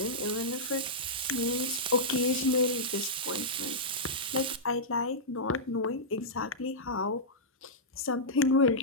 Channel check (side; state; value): both; normal; correlation -0.12